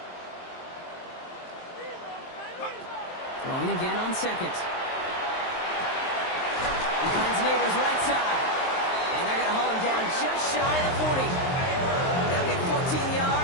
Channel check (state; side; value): late; right; 23 ms